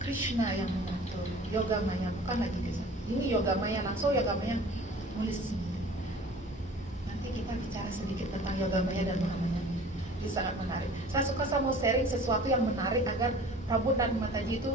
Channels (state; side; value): normal; both; correlation 0.45